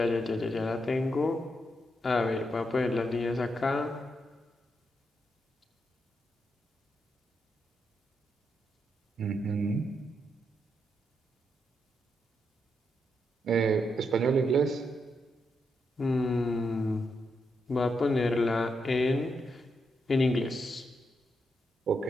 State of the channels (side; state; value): both; normal; correlation 0.82